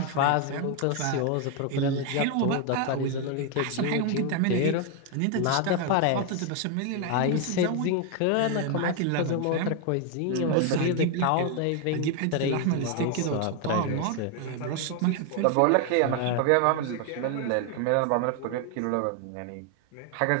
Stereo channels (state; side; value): different; both; correlation 0.01